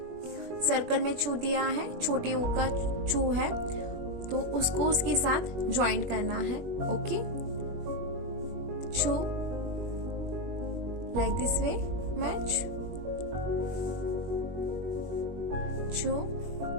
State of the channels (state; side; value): late; left; 21 ms